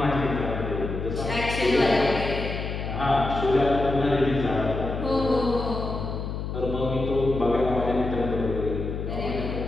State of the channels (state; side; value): noise; left; hum, 5 dB below the sound